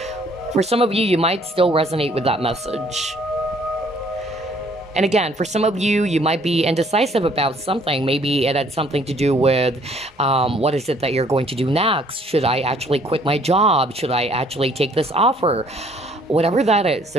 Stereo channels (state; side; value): normal; both; correlation 0.61